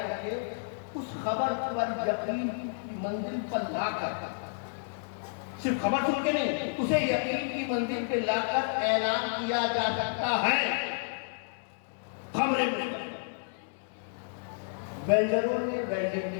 سکے، اس خبر پر یقین کی منزل پر لا کر، صرف خبر سن کے نہیں، اسے یقین کی منزل پہ لا کر اعلان کیا جا سکتا ہے۔ خبریں ویلڈروں نے ویلڈنگ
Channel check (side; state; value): right; silent; digital silence